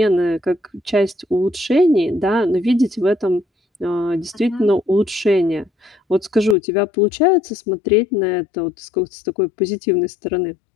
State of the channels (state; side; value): drops out; right; at 6.6 s